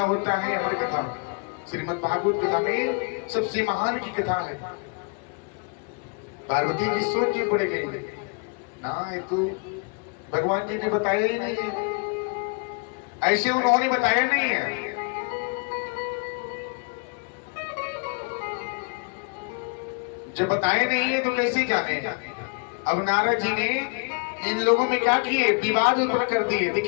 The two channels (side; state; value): right; quieter; 35.3 dB